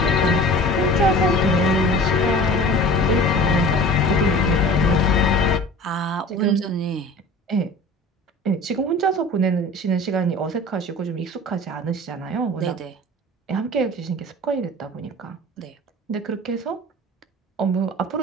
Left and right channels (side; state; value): both; normal; correlation 0.41